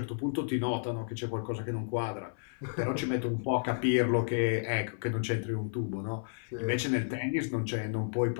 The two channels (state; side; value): silent; right; 56 dB below the other